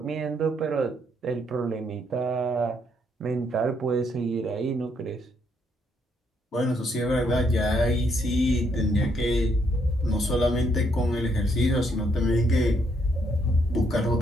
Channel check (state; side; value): normal; both; correlation 0.73